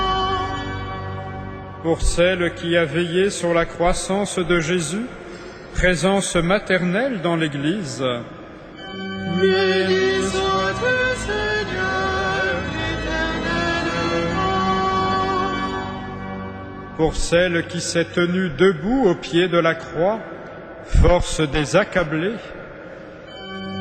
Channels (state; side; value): identical; both; correlation 1.00